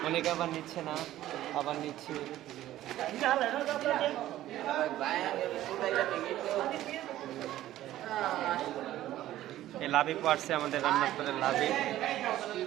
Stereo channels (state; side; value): quieter; left; 14.0 dB